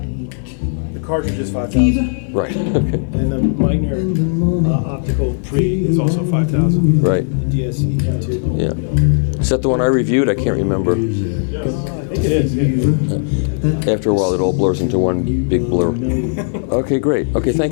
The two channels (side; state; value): right; silent; digital silence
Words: The cartridge is 5,000. Right. Okay. And the Meitner optical pre is also 5,000. Right. The DSE too. Yeah. Is that the one I reviewed? I can't remember. I think it is. Yeah. After a while, it all blurs into one big blur. Okay, great. Okay,